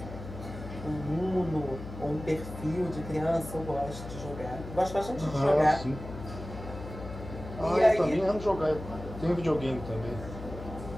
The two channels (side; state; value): left; noise; hum, 11 dB below the sound